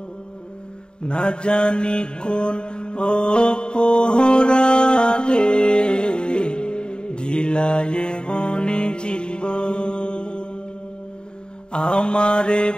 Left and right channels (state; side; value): late; right; 0.049 ms